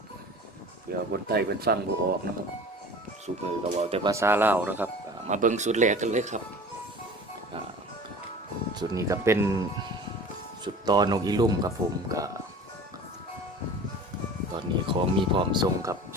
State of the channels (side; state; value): both; normal; correlation 0.41